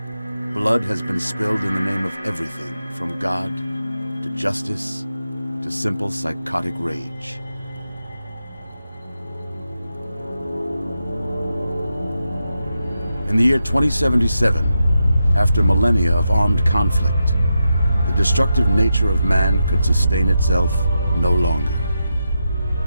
blood has been spilled in the name of everything from God to justice to simple psychotic rage. In the year 2077, after millennia of armed conflict, the destructive nature of man could sustain itself no longer.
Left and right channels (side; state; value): both; inverted; correlation -0.87